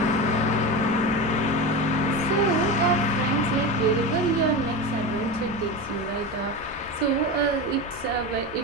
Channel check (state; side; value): normal; both; correlation 0.23